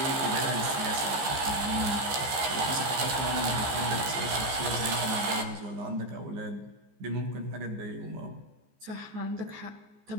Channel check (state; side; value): late; left; 14 ms